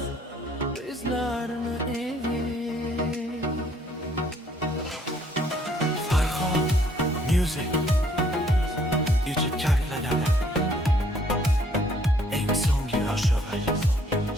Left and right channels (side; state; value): both; normal; correlation 0.64